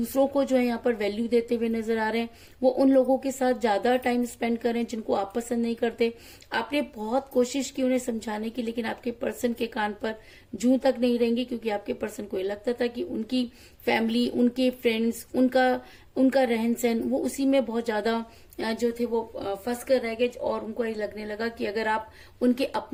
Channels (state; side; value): identical; both; correlation 1.00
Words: को जो है यहाँ पर वैल्यू देते हुए नजर आ रहे हैं, वो उन लोगों के साथ ज्यादा टाइम स्पेंड कर रहे हैं जिनको आप पसंद नहीं करते। आपने बहुत कोशिश की उन्हें समझाने की, लेकिन आपके पर्सन के कान पर जूं तक नहीं रहेंगी, क्योंकि आपके पर्सन को ये लगता था कि उनकी फैमिली, उनके फ्रेंड्स, उनका रहन सहन, वो उसी में बहुत ज्यादा जो थे वो फंस कर रह गए। और उनको ये लगने लगा कि अगर आप उनके